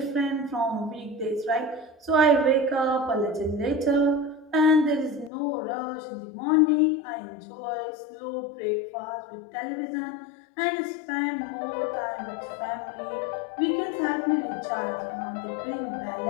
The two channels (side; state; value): right; drops out; at 5.3 s